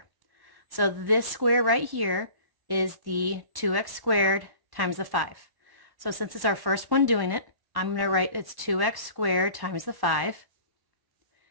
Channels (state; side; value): late; left; 1.1 ms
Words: So this square right here is the 2x squared times the 5. So since it's our first one doing it, I'm going to write it's 2x squared times the 5.